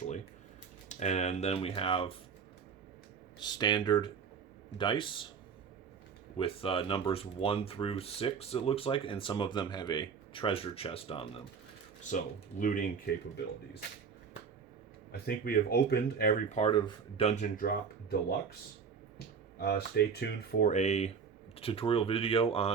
And then we have standard dice with numbers 1 through 6, it looks like, and some of them have a treasure chest on them. So, looting capabilities. I think we have opened every part of Dungeon Drop Deluxe. Stay tuned for a tutorial video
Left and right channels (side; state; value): left; quieter; 6.2 dB